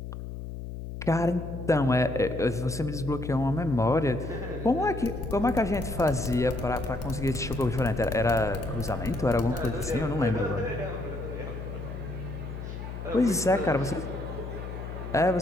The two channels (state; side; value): noise; left; hum, 8 dB below the sound